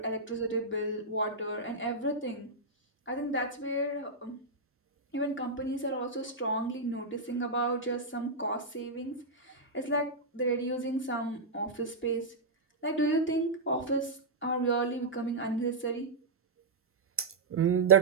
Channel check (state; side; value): quieter; left; 3.2 dB